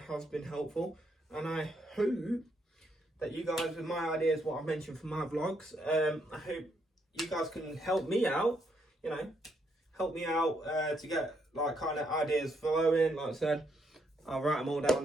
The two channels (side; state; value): both; normal; correlation 0.75